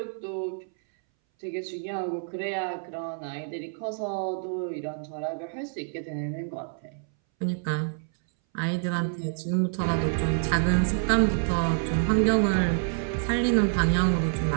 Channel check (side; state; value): left; silent; 60 dB below the other